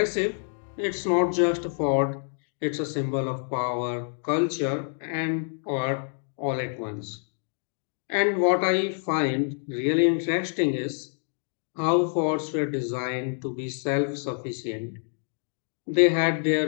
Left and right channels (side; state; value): right; silent; 60 dB below the other